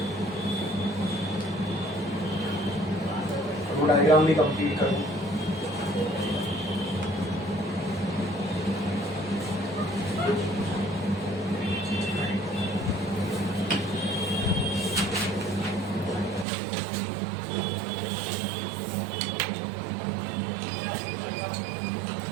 डायग्राम भी complete करूं।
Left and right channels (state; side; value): drops out; left; at 16.4 s